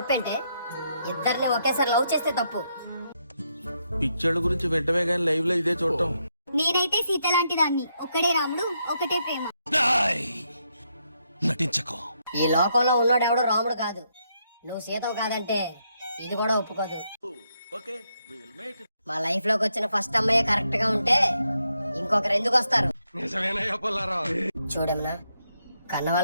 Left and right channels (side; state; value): both; inverted; correlation -0.79